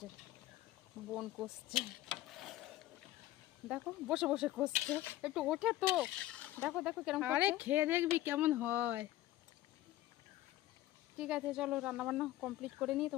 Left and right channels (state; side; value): quieter; right; 14.9 dB